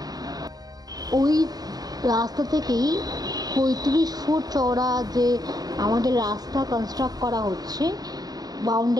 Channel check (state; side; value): late; left; 0.19 ms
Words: ওই রাস্তা থেকেই 35 ফুট চওড়া যে আমাদের রাস্তা কনস্ট্রাক্ট করা হচ্ছে